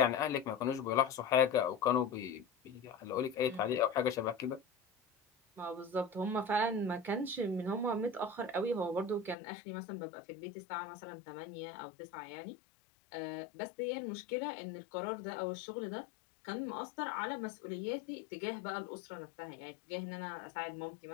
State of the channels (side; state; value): right; drops out; at 9.3 s